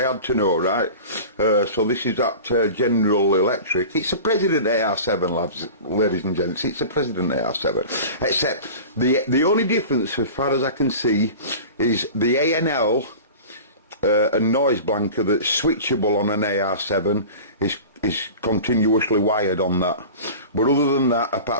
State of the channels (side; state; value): both; inverted; correlation -0.36